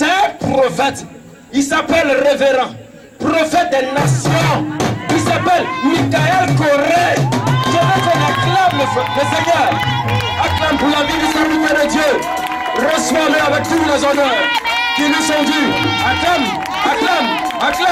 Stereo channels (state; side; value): identical; both; correlation 1.00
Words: un prophète. Il s'appelle révérend. Prophète des nations. Il s'appelle Michael Corée. Je veux qu'on acclame le Seigneur. Acclame pour la vie du serviteur de Dieu. Reçois-le avec tous les honneurs qui nous sont dus. Acclame, acclame,